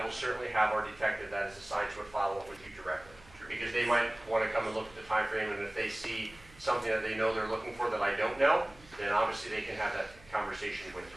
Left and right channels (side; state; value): right; noise; hum, 23 dB below the sound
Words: will certainly have our detective that is assigned to it follow up with you directly. Because they might want to come and look at the time frame, and if they see something that they know they're looking for that I don't know, then obviously they can have that conversation with